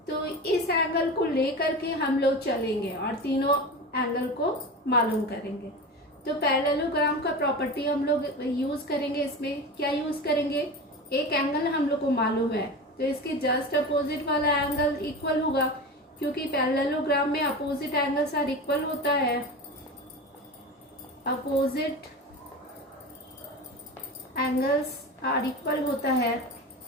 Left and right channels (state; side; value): normal; both; correlation 0.28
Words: तो इस एंगल को लेकर के हम लोग चलेंगे और तीनों एंगल को मालूम करेंगे। तो पैरेललोग्राम का प्रॉपर्टी हम लोग यूज करेंगे। इसमें क्या यूज करेंगे, एक एंगल हम लोग को मालूम है तो इसके जस्ट अपोजिट वाला एंगल इक्वल होगा, क्योंकि पैरेललोग्राम में अपोजिट एंगल्स आर इक्वल होता है। अपोजिट एंगल्स आर इक्वल होता है,